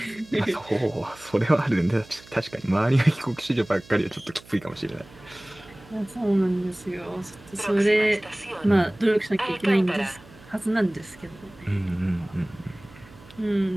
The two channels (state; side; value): noise; right; hum, 23 dB below the sound